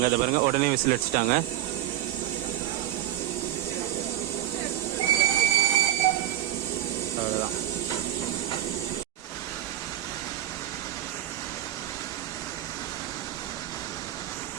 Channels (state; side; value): quieter; left; 12.9 dB